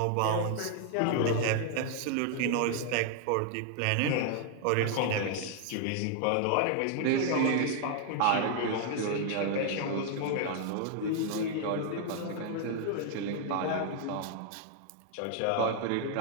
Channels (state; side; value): different; both; correlation 0.00